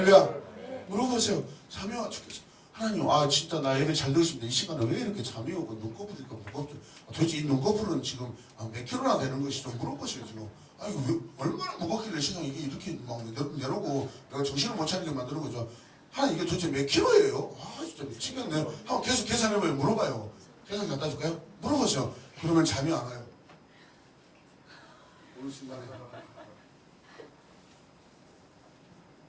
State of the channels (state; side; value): identical; both; correlation 1.00